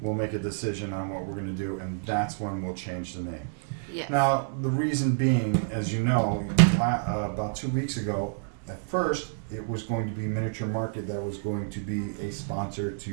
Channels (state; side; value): silent; left; 59 dB below the other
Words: we'll make a decision on what we're going to do, and that's when we'll change the name. Yes. Now, the reason being, as you know, about 2 weeks ago, at first, it was going to be Miniature Market that was going to be a sponsor